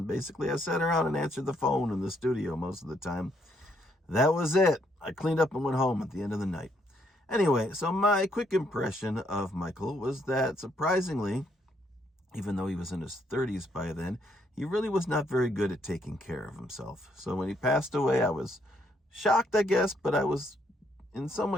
basically I sat around and answered the phone in the studio most of the time. That was it. I cleaned up and went home at the end of the night. Anyway, so my quick impression of Michael was that, surprisingly, even though he was in his 30s by then, he really was not very good at taking care of himself. So when he passed away, I was shocked, I guess, but I was in some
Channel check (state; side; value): normal; both; correlation 0.72